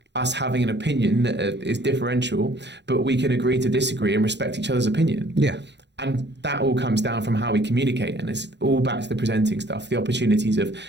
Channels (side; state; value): left; late; 0.51 ms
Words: us having an opinion that is differential, but we can agree to disagree and respect each other's opinion. Yeah. And that all comes down from how we communicate, and it's all back to the presenting stuff, the opportunities